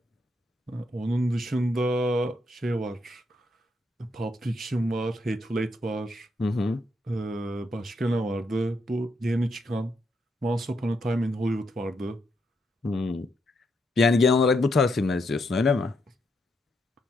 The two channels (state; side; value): normal; both; correlation 0.79